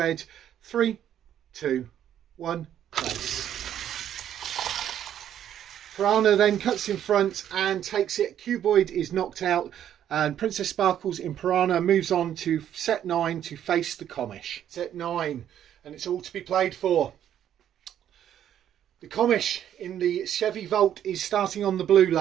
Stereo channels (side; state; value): left; quieter; 10.4 dB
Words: 3, 2, 1, race. Piranha then cuts in front and takes it. Cuboid is knocked out, and Princess Sparkles in Piranha moves on to set 9 to face the Comish. Set 9, and it's all to be played for. The Comish in the Chevy Volt is starting on the blue